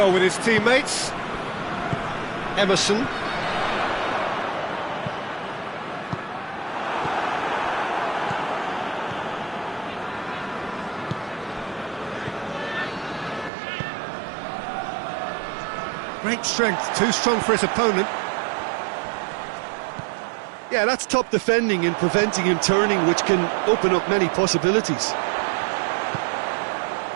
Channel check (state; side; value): drops out; left; at 13.5 s